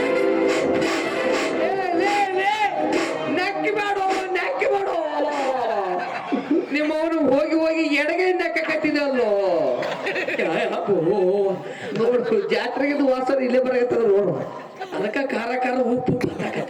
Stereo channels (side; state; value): both; identical; correlation 1.00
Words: ನಕ್ಕಿ ಮಾಡು, ನಕ್ಕಿ ಮಾಡು. ನಿಮ್ಮವನು ಹೋಗಿ ಹೋಗಿ ಎಡಗೈಯಿಂದ ಕಟ್ಟಿದಲ್ಲೋ. ನೋಡು, ಜಾತ್ರೆಗಿದ್ದು ವಾಸನ ಇಲ್ಲೇ ಬರಕತ್ತದ ನೋಡು. ಅದಕ್ಕ ಖಾರ ಖಾರ ಉಪ್ಪು